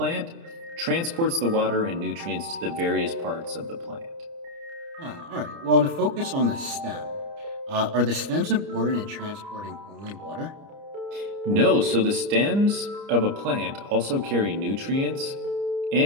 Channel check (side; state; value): left; late; 29 ms